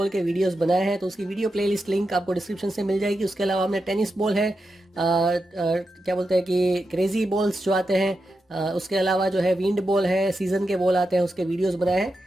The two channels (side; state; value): both; normal; correlation 0.88